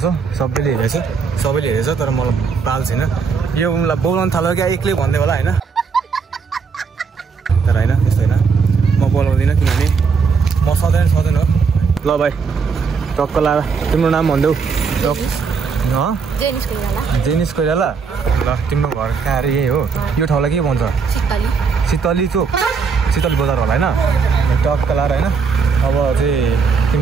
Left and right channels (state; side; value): quieter; left; 5.4 dB